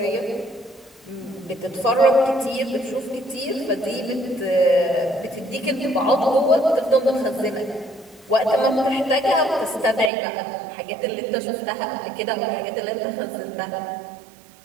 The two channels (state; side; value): drops out; left; at 10.1 s